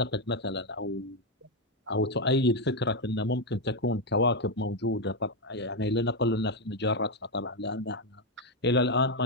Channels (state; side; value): normal; both; correlation 0.04